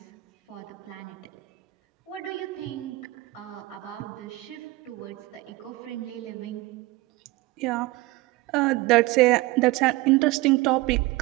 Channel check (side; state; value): left; quieter; 20.1 dB